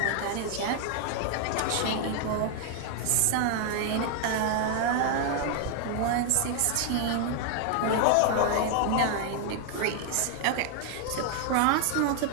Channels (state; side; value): different; both; correlation 0.00